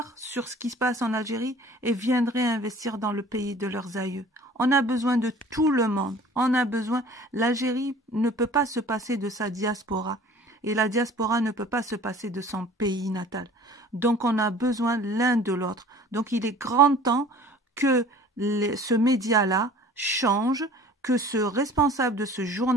sur ce qui se passe en Algérie et viendraient investir dans le pays de leurs aïeux. On a besoin de tout le monde. On a besoin. L'Algérie ne peut pas se passer de sa diaspora. Et la diaspora ne peut pas se passer de son pays natal. Donc on a besoin l'un de l'autre. Donc il est grand temps que ce média-là change, que ce responsable de ce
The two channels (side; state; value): both; normal; correlation 0.47